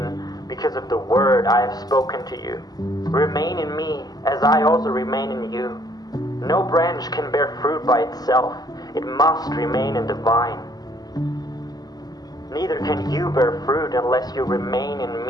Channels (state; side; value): late; right; 0.19 ms